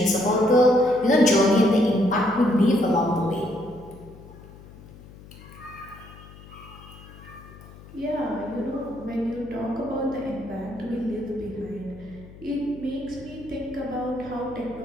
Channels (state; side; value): noise; left; hum, 19 dB below the sound